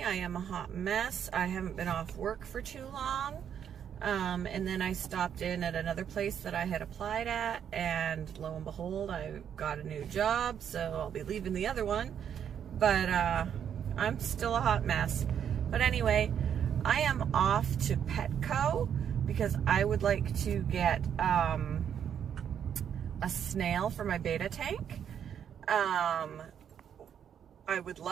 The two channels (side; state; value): left; quieter; 8.6 dB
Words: I am a hot mess. I haven't been off work for too long, and then I stopped in at another place that I had applied at, and lo and behold, I got a new job, so I'll be leaving the other one, but I'm still a hot mess. But anyway, I am off to Petco because I would like to get a snail for my beta tank. I would